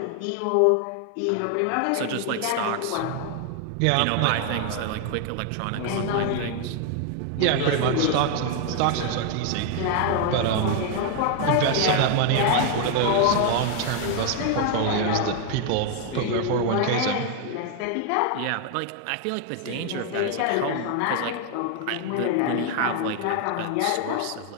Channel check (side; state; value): both; different; correlation 0.00